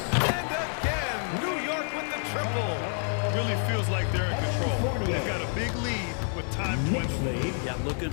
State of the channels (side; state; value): right; silent; 55 dB below the other